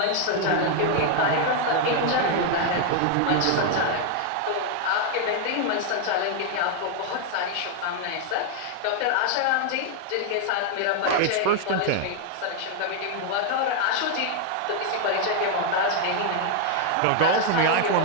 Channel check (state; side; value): different; both; correlation 0.00